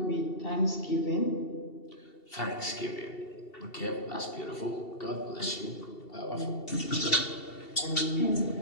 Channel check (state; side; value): late; right; 2.7 ms